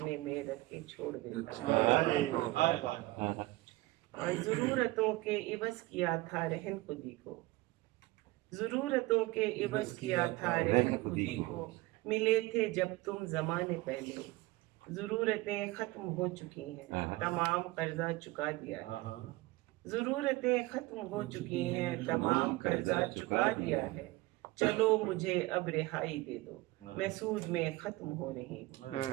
میں رکھ کے چھوڑ دیتا ہے، اور ضرورتوں کے عوض کیا تھا رہن خودی کو، ضرورتوں کے عوض کیا تھا رہن خودی کو، ملے تھے جب تم زمانے پہلے، ضرورتیں ختم ہو چکی ہیں، تمام قرضہ چکا دیا ہے، ضرورتیں ختم ہو چکی ہیں، تمام قرضہ چکا دیا ہے، چلو مجھے اب رہائی دے دو، میں سود میں ختم ہو رہی ہوں۔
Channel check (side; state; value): left; quieter; 20.6 dB